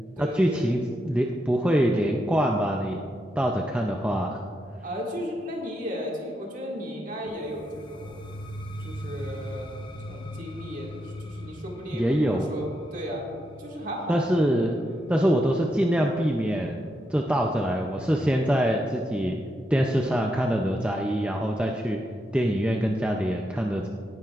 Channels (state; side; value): normal; both; correlation 0.82